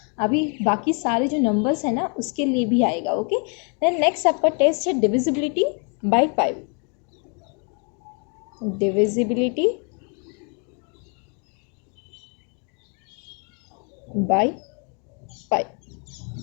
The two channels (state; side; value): quieter; right; 37.5 dB